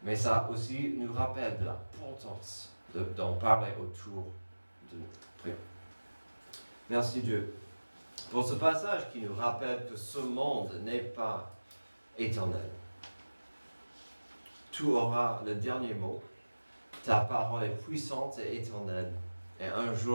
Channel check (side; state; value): both; inverted; correlation -1.00